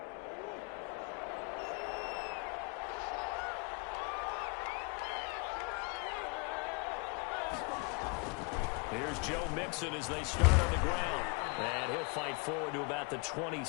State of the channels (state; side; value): quieter; right; 31.2 dB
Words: Here's Joe Mixon as they start on the ground. And he'll fight forward to about the